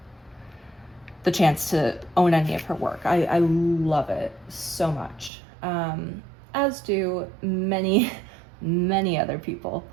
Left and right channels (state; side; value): drops out; left; at 5.3 s